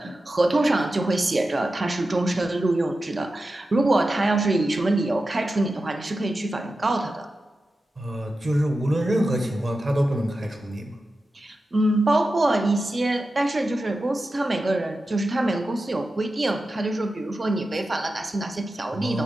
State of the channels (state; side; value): normal; both; correlation 0.92